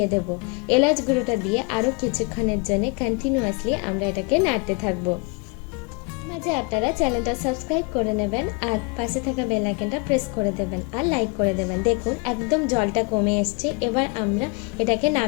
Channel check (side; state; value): right; quieter; 29.9 dB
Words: দেব। এলাচ গুঁড়োটা দিয়ে আরও কিছুক্ষণের জন্য কন্টিনিউয়াসলি আমরা এটাকে নাড়তে থাকবো। মাঝে আপনারা চ্যানেলটা সাবস্ক্রাইব করে নেবেন আর পাশে থাকা বেল আইকনটা প্রেস করে দেবেন আর লাইক করে দেবেন। দেখুন একদম জলটা কমে এসছে। এবার আমরা এটাকে